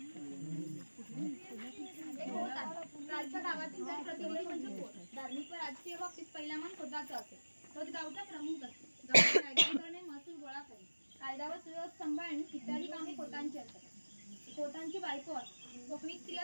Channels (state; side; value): inverted; both; correlation -1.00